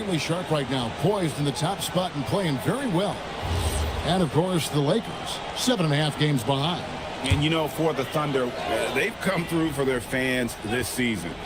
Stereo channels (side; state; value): both; identical; correlation 1.00